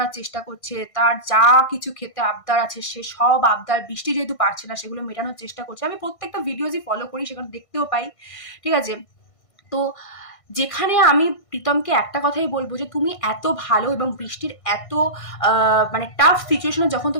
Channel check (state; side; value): late; right; 1.5 ms